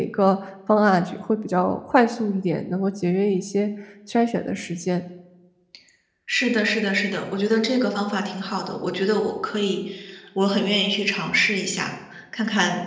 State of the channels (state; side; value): identical; both; correlation 1.00